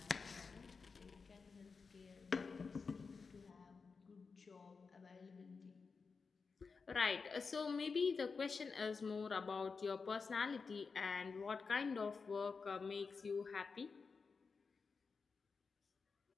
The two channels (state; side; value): quieter; right; 4.9 dB